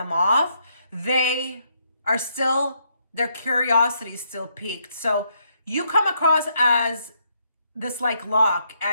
off, they are still, their curiosity is still piqued. So you come across as this like lock,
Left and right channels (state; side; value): inverted; both; correlation -0.75